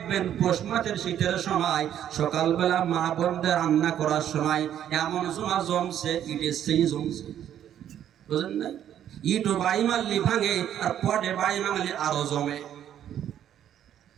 পৌষ মাসের শীতের সময় সকালবেলা মা বোনদের রান্না করার সময় এমন জমা জমছে, ইটের সেই জমছে, বুঝলেন নাই? ইটও বাড়ি মারলি ভাঙে, আর পটে বাড়ি মারলি আরো জমে।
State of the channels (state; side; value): quieter; left; 10.4 dB